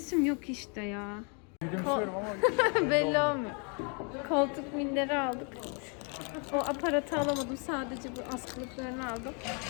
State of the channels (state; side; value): quieter; right; 37.3 dB